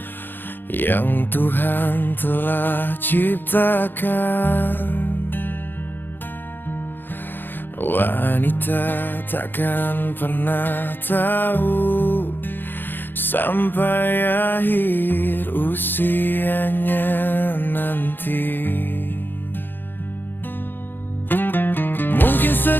yang Tuhan telah ciptakan, wanita takkan pernah tahu sampai akhir usianya nanti. Mungkin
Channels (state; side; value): late; right; 0.096 ms